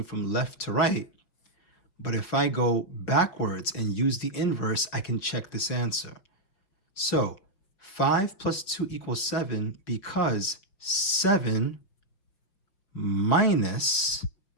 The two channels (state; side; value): late; right; 5.4 ms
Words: from left to right, but if I go backwards and use the inverse, I can check this answer. So 5 plus 2 equals 7 because 7 minus,